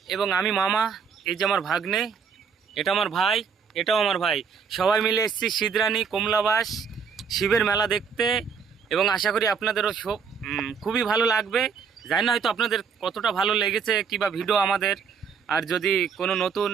এবং আমি মামা, এই যে আমার ভাগ্নে, এটা আমার ভাই, এটাও আমার ভাই, সবাই মিলে এসেছি সিদ্রানী কমলাবাস শিবের মেলা দেখতে এবং আশা করি আপনাদেরও খুবই ভালো লাগবে। জানি না হয়তো আপনাদের কতটা ভালো লেগেছে কিংবা ভিডিও আমাদের, আর যদি কোনো নতুন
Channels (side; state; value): left; quieter; 6.3 dB